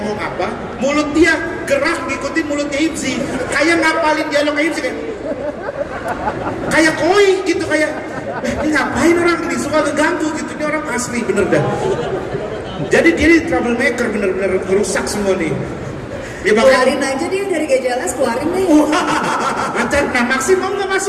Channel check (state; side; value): identical; both; correlation 1.00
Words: apa, mulut dia gerak ngikutin mulutnya Hipsi. Kayak ngapalin dialognya Hipsi kayak koi gitu, kayak ini ngapain orang ini, suka keganggu gitu. Ini orang asli bener dah. Jadi dia ini troublemaker, bener-bener merusak semua nih. Ya Keluarin aja dia dari GJLS, keluarin deh. Lancar, nah maksimal nggak